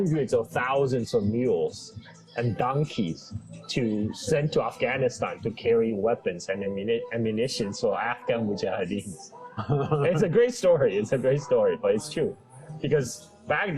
of thousands of mules and donkeys to send to Afghanistan to carry weapons and ammunition for Afghan mujahideens. It's a great story. It's a great story, but it's true because back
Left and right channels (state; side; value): identical; both; correlation 1.00